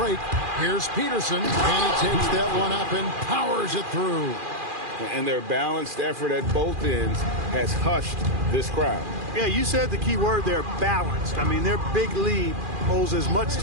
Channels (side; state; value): left; late; 2.4 ms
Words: Here's Peterson. And he takes that one up and powers it through. And their balanced effort at both ends has hushed this crowd. Yeah, you said the key word there, balanced. I mean, their big lead owes as much